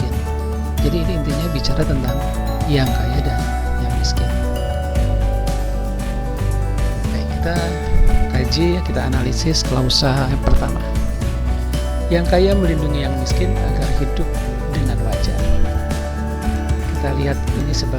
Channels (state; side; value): identical; both; correlation 1.00